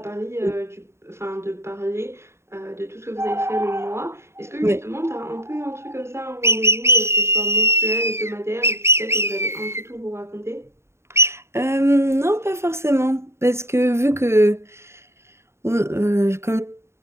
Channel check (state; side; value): late; left; 0.13 ms